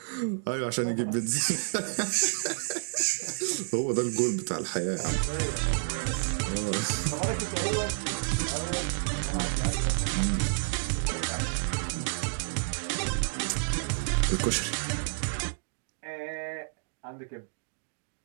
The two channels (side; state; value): left; silent; digital silence